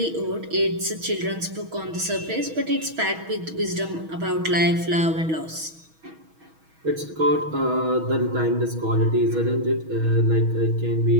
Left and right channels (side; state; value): left; late; 6.3 ms